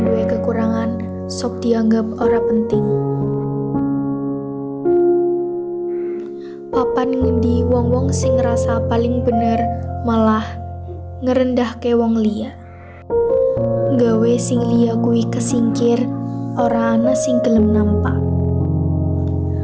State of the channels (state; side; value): identical; both; correlation 1.00